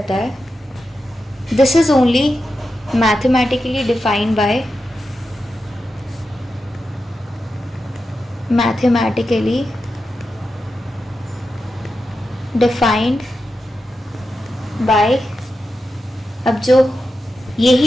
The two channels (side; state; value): both; normal; correlation 0.89